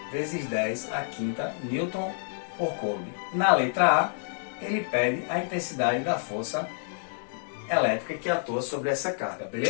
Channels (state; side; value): silent; right; 57 dB below the other